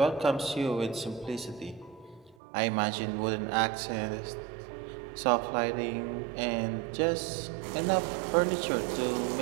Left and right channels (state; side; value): drops out; left; at 2.4 s